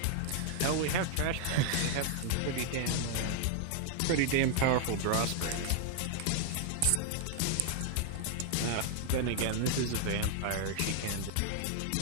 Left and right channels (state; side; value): different; both; correlation 0.00